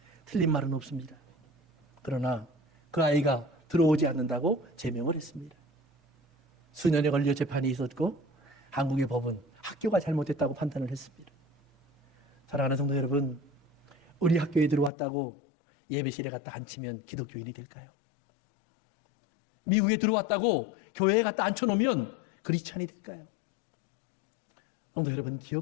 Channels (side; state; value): right; drops out; at 14.9 s